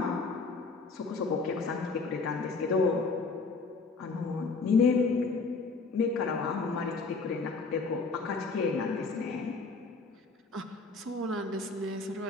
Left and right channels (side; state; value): right; quieter; 4.1 dB